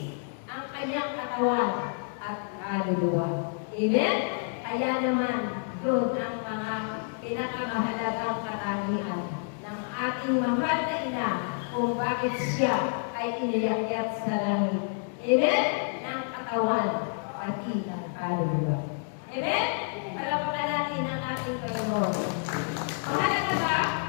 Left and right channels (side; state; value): right; silent; 59 dB below the other